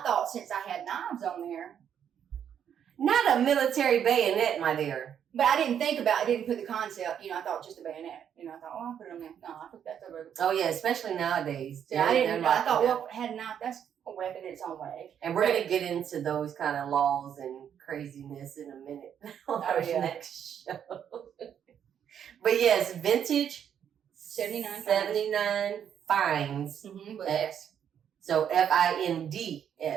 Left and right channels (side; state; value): left; quieter; 8.8 dB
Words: thought since I had knives on there, not a military bayonet, my dear. But I didn't think about it. I didn't put the concept. You know, I thought just a bayonet. You know, I thought, I'll put it on there. No, I put that over. Oh yeah, especially nowadays. Yeah, I didn't. I thought, well, had a knife. That's a weapon in its own way. And we're gonna get into those kind of laws and craziness in a minute on our next show. But yes, vintage 79 finds. Mm-hmm, with S. So FINDS.